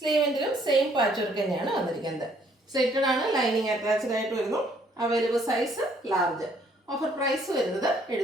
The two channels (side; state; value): both; normal; correlation 0.64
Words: സെയിം പാച്ച് വർക്ക് തന്നെയാണ് വന്നിരിക്കുന്നത്. സെറ്റഡ് ആണ്, ലൈനിങ് അറ്റാച്ച്ഡ് ആയിട്ട് വരുന്നു. Available size large. Offer price വരുന്നത്